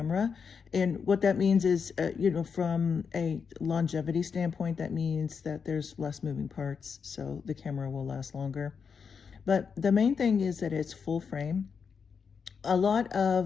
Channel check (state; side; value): quieter; right; 6.1 dB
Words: And what that means is, from a longevity standpoint, that means that there's less moving parts, so the camera will last longer. But the main thing is that it's full frame. A lot